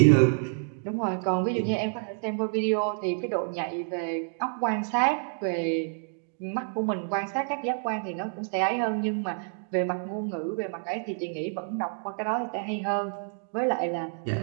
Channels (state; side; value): silent; left; 59 dB below the other